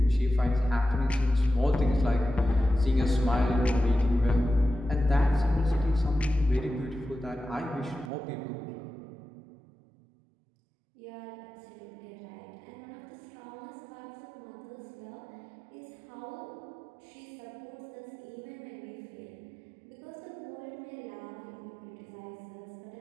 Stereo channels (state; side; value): drops out; left; at 8.1 s